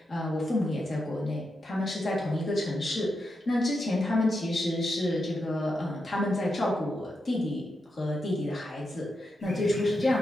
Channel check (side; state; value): both; normal; correlation 0.86